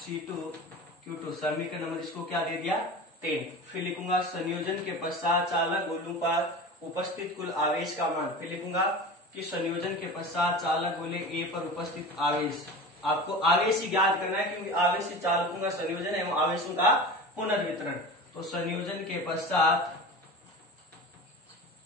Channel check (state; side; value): normal; both; correlation 0.32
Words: Q2, समीकरण नंबर इसको क्या दे दिया 10। फिर लिखूंगा संयोजन के पश्चात चालक गोलों पर उपस्थित कुल आवेश का मान। फिर लिखूंगा कि संयोजन के पश्चात चालक गोले A पर उपस्थित आवेश, आपको आवेश ही ज्ञात करना है क्योंकि आवेश ही चालकों का संयोजन एवं आवेशों का पुनर्वितरण। तो संयोजन के पश्चात